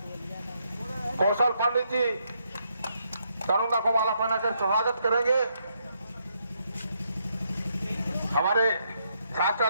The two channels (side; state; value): both; inverted; correlation -0.77